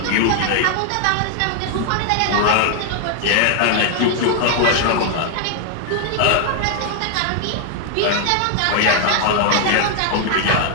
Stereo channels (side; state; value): both; different; correlation 0.00